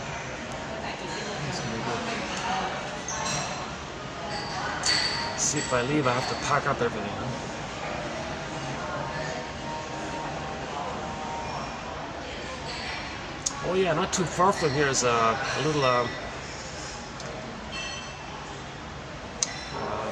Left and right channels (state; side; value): identical; both; correlation 1.00